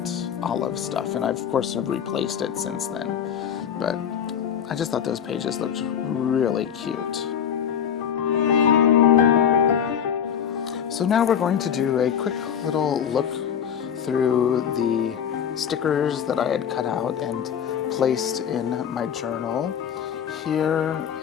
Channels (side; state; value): right; quieter; 8.4 dB